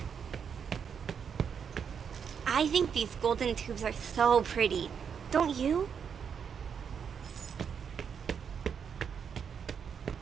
I think these golden tubes are so pretty. Don't you?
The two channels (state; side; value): quieter; left; 7.1 dB